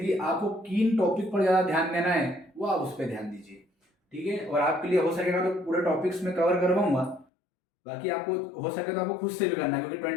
आपको किन टॉपिक पर ज़्यादा ध्यान देना है वो आप उस पर ध्यान दीजिए, ठीक है। और आपके लिए हो सकेगा तो पूरे टॉपिक्स में कवर करवाऊंगा, बाकी आपको हो सके तो आपको खुद से भी करना है, क्योंकि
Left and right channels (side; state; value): right; drops out; at 7.2 s